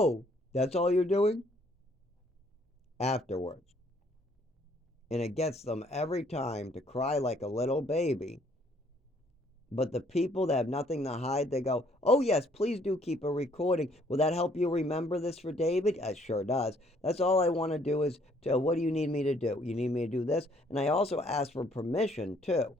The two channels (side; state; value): both; normal; correlation 0.64